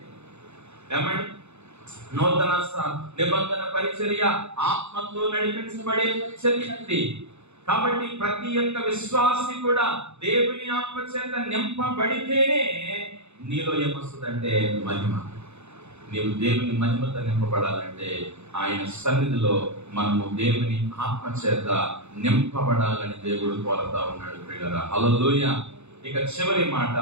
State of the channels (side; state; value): left; late; 0.81 ms